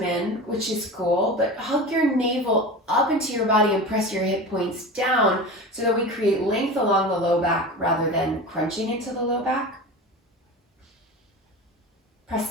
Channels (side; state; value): both; normal; correlation 0.31